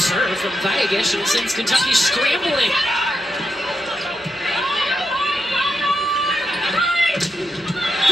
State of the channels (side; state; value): both; normal; correlation 0.85